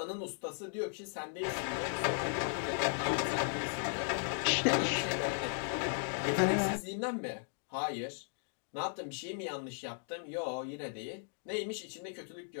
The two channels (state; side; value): silent; right; 53 dB below the other